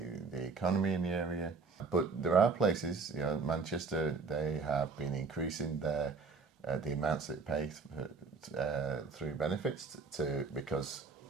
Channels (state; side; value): quieter; left; 4.5 dB